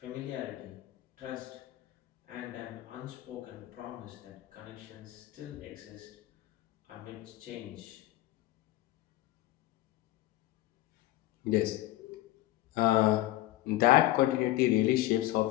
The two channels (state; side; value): quieter; right; 16.2 dB